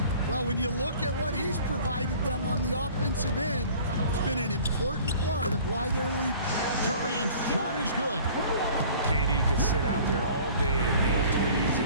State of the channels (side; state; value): both; inverted; correlation -0.48